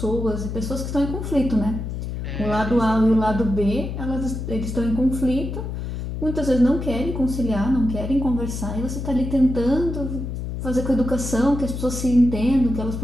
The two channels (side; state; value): left; noise; hum, 5 dB below the sound